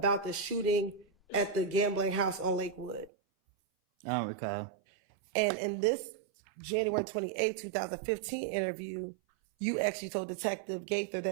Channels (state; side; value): drops out; left; at 3.1 s